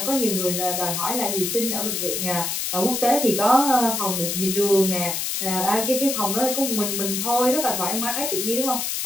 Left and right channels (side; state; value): left; noise; hiss, 1 dB below the sound